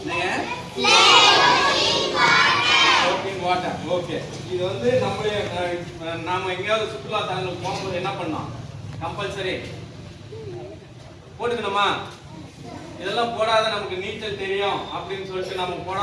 வாட்டர். ஓகே, இது வந்து நாம எங்கேயாவது சுற்றுலா தலங்களுக்கு போகும்போது என்ன பண்ணோம்? கம்பல்சரி போட்டுக்கணுமா? இதெல்லாம் போடாத நமக்கு நீச்சல் தெரியும் அப்படின்னு சொல்லிட்டு நம்ம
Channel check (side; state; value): both; identical; correlation 1.00